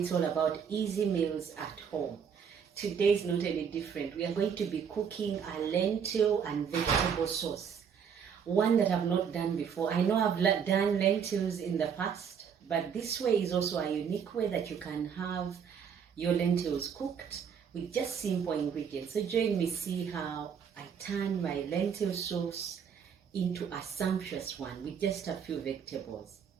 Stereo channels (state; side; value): quieter; left; 7.2 dB